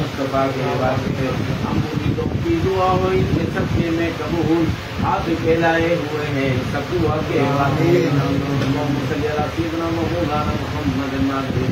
کے واسطے ہم امیدوں کی دعا ہو ان کے سبقے میں قبول آپ پھیلائے ہوئے ہیں سب دعا کے واسطے محمد صلی اللہ سیدنا مولانا محمد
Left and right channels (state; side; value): identical; both; correlation 1.00